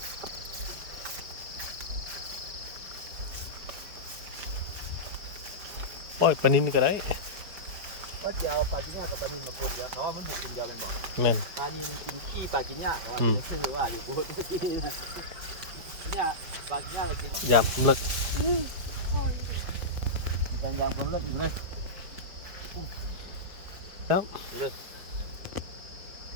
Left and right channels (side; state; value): left; late; 4.9 ms